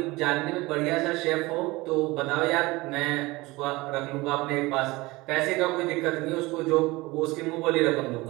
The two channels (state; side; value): quieter; left; 21.7 dB